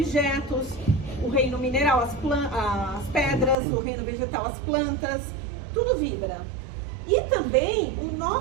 o reino mineral, as pedras, o reino vegetal, as plantas, tudo vibra. E também o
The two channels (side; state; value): left; drops out; at 3.6 s